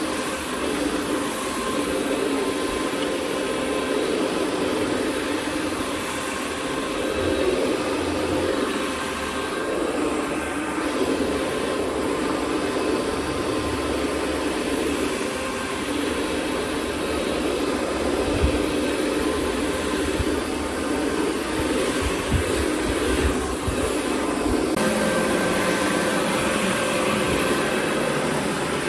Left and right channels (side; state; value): both; identical; correlation 1.00